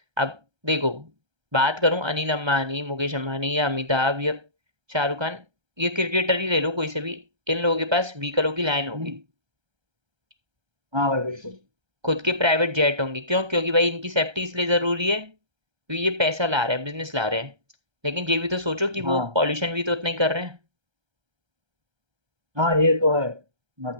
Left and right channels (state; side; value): late; left; 1.3 ms